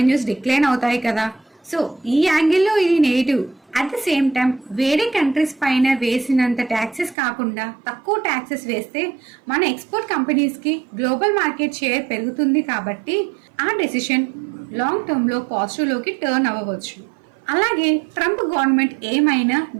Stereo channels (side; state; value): left; drops out; at 7.2 s